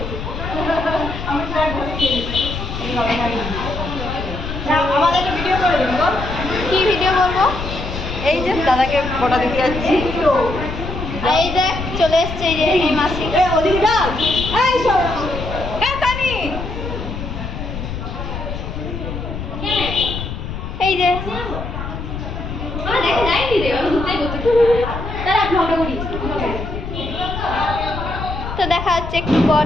কি ভিডিও করবো? এই যে দাদাকে ফটো দিতে যাচ্ছি। এই দেখ চলে এসছে এই যে এই মাসি। এই যে তো দেখা যাচ্ছে একটু পর।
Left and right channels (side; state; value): left; noise; rumble, 6 dB below the sound